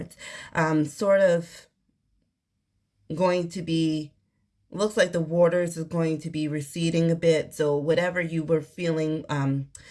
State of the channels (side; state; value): both; identical; correlation 1.00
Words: sort of going to be, looks like the waters is going to be receding a bit. So whatever you were feeling